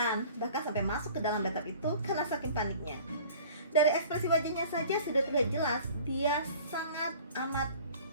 bahkan sampai masuk ke dalam bathtub itu karena saking paniknya. Dari ekspresi wajahnya saja sudah terlihat jelas dia sangat amat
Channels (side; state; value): both; inverted; correlation -0.46